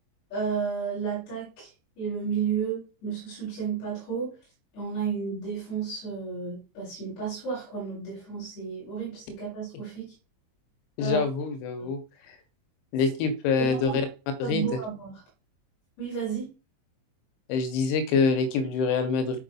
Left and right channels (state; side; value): late; right; 23 ms